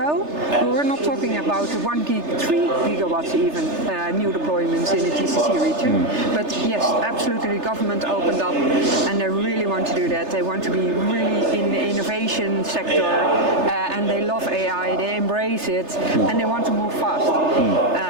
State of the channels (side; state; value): left; late; 3.3 ms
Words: we were not talking about 1 gig, 3 gigawatts even new deployments in the GCC region. But yes, absolutely, the government opened up, and they really want to do that. They want to be really in the innovation sector, and they love AI, they embrace it, and they want to move fast.